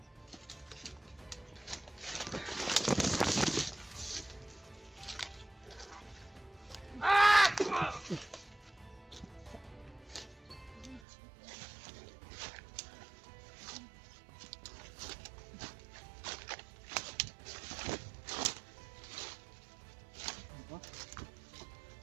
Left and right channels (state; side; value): drops out; left; at 11.0 s